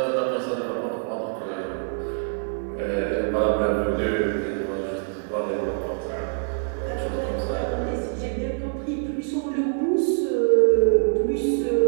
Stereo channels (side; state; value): left; silent; 62 dB below the other